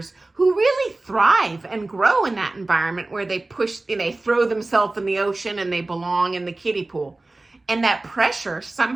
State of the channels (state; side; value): quieter; left; 3.0 dB